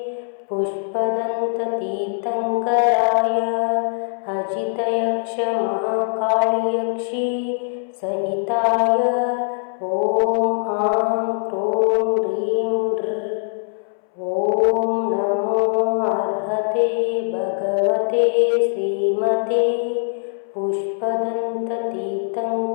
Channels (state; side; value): silent; right; 65 dB below the other